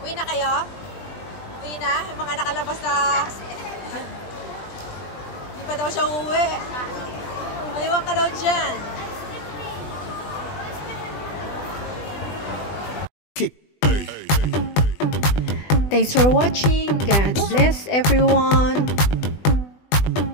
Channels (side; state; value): right; late; 20 ms